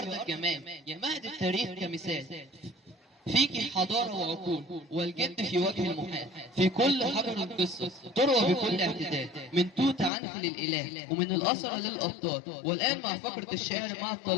الجمال، يا مهد التاريخ كمثال، فيك حضارة وعقول والجد في وجه المحال. في كل حجر قصة تروى بكل اعتدال، من توت عنخ للإله ومن الأسرة للأبطال. والآن مع فقرة الشعر مع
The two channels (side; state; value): right; drops out; at 10.1 s